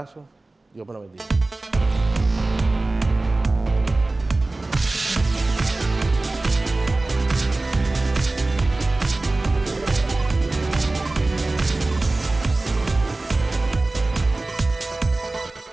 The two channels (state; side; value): quieter; left; 3.0 dB